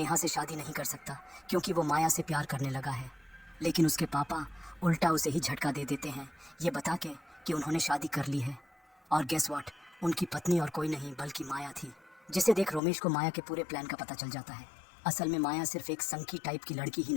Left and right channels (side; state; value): right; drops out; at 12.8 s